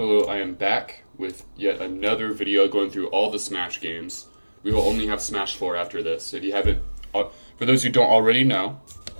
I am back with yet another video going through all the Smash games. We will only have Smash 4 after this. If you haven't, for those who don't already know,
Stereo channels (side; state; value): both; inverted; correlation -1.00